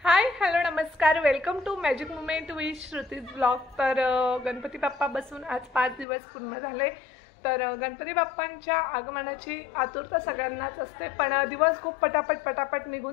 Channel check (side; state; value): right; drops out; at 6.1 s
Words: हाय hello नमस्कार, welcome to magic moment with Shruti's blog. तर गणपती बाप्पा बसून आज 5 दिवस पूर्ण झाले। तर गणपती बाप्पांच्या आगमनाची आतुरता सगळ्यांनाच असते, पण दिवस खूप पटापट